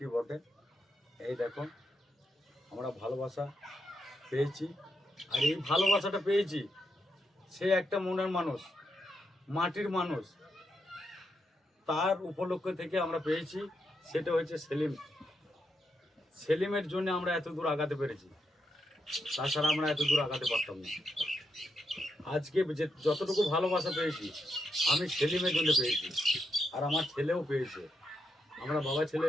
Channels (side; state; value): both; normal; correlation 0.82